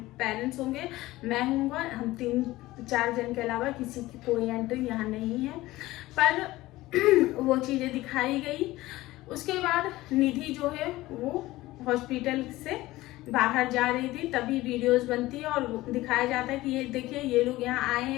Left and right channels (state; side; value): quieter; right; 17.9 dB